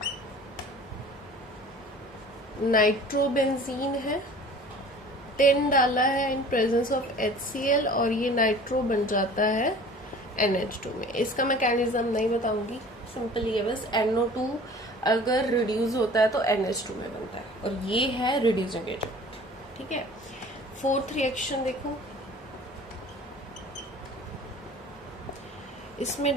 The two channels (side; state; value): both; normal; correlation 0.45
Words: नाइट्रोबेंजीन है, 10 डाला है इन प्रेजेंस ऑफ HCl, और ये नाइट्रो बन जाता है NH2 में। इसका मैकेनिज्म नहीं बताऊंगी, सिंपल ये बस NO2 अगर रिड्यूस होता है तो NH2 में बनता है, और ये है रिड्यूसिंग एजेंट, ठीक है। फोर्थ रिएक्शन देखो, इसमें